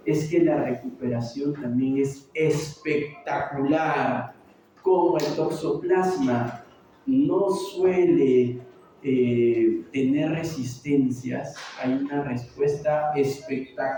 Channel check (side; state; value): both; identical; correlation 1.00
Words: es que la recuperación también es espectacular. Como el toxoplasma no suele tener resistencias, hay una respuesta